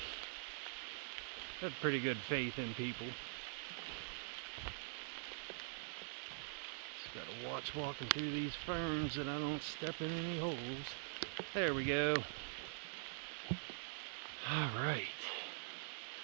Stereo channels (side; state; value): left; silent; digital silence